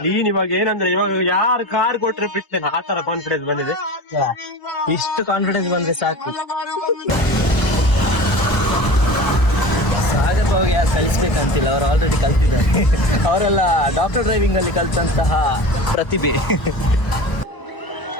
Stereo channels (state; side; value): late; right; 1.0 ms